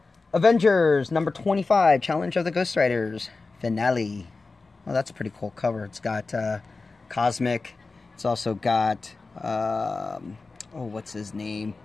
Avengers number 25, Challenge of the Ghost Riders, finale. Well, that's a pretty cool cover. It's got Cosmic. It's also got, what's his name?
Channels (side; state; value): right; quieter; 3.8 dB